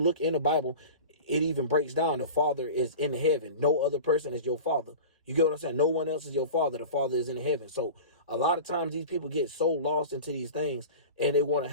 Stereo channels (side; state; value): both; inverted; correlation -0.35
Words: in the Bible, it even breaks down the Father is in heaven. No other person is your Father. You get what I'm saying? No one else is your Father. The Father is in heaven. So a lot of times these people get so lost into these things and they want to